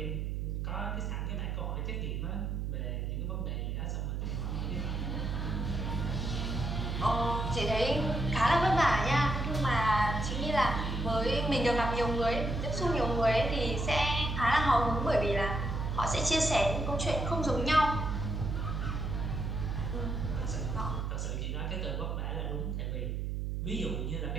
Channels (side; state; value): right; noise; hum, 2 dB below the sound